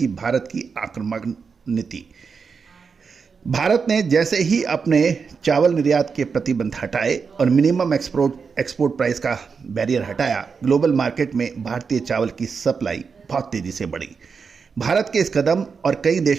भारत की आक्रामक नीति। भारत ने जैसे ही अपने चावल निर्यात के प्रतिबंध हटाए और मिनिमम एक्सपोर्ट प्राइस का बैरियर हटाया, ग्लोबल मार्केट में भारतीय चावल की सप्लाई बहुत तेज़ी से बढ़ी। भारत के इस कदम और कई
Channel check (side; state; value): left; quieter; 5.6 dB